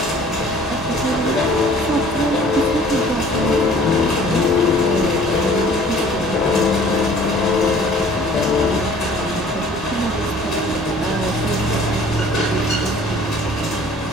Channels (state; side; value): normal; both; correlation 0.52